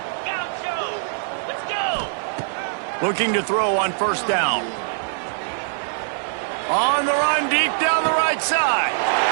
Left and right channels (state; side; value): silent; left; digital silence